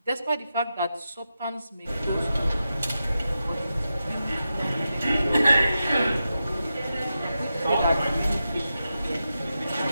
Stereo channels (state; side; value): inverted; both; correlation -0.89